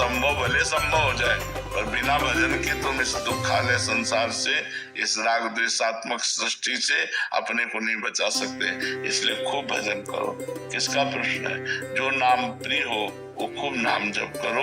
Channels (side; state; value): both; identical; correlation 1.00